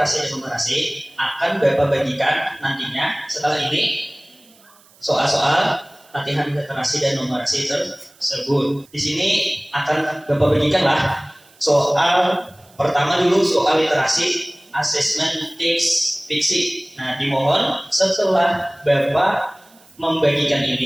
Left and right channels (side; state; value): right; noise; hiss, 28 dB below the sound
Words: dan numerasi akan Bapak bagikan nantinya setelah ini soal-soal latihan literasi dan numerasi tersebut. Di sini akan Bapak bagikanlah soal pertama dulu, soal literasi assessment text fiksi. Nah, dimohon setelah Bapak membagikan